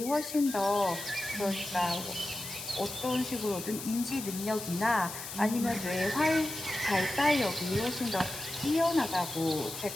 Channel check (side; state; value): left; noise; hiss, 9 dB below the sound